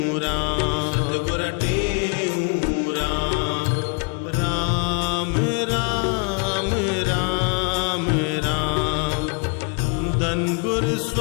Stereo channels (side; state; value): right; quieter; 34.9 dB